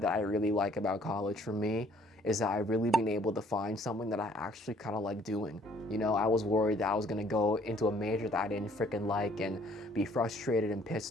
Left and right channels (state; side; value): normal; both; correlation 0.60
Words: I really like about college for me is that I've really been able to find something that I actually kind of like doing. You know, I was worried that I was gonna go into a major that I didn't freaking like and be frustrated and